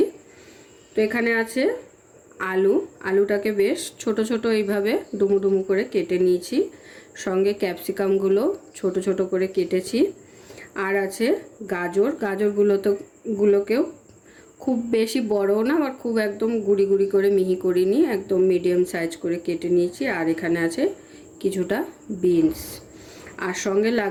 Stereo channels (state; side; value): identical; both; correlation 1.00